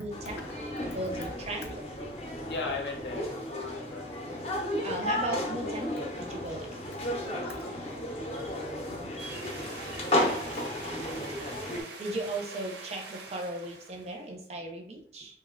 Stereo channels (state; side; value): normal; both; correlation 0.25